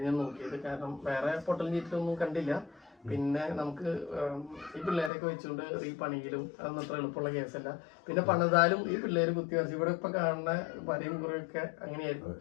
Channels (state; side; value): drops out; right; at 5.1 s